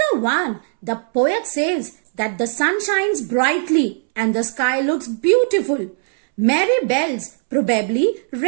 1, the poet says that the sun shines brightly and the sky looks beautiful. Merry bells probably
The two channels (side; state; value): left; silent; 67 dB below the other